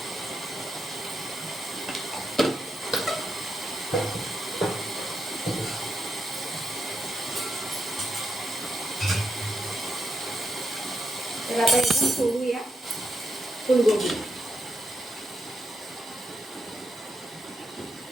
तर आता एकदम सोडूया फुलगोबी.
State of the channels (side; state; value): both; normal; correlation 0.84